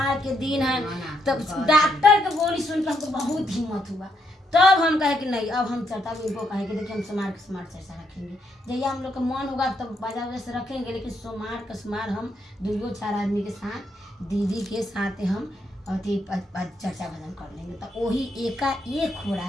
के दिन है। तब डॉक्टर के बोली सुन के हमको बहुत हिम्मत हुआ। तब हम कहे कि नहीं अब हम चर्चा में इनको कहे कि देखिए हम समार चर्चा रखेंगे जैसे हम लोग का मन होगा तब बाजा वजह से रखेंगे। लेकिन सोमवार हम 2-4 आदमी के साथ दीदी के साथ हम अति चर्चा भजन कर लेंगे। तो वही एकाएक हो रहा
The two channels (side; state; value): both; normal; correlation 0.76